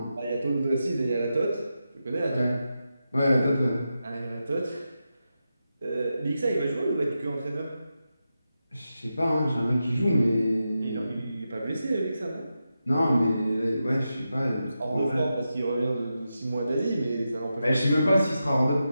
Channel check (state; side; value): inverted; both; correlation -0.89